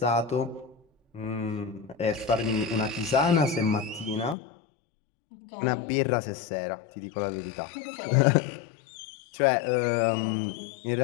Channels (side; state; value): right; drops out; at 4.4 s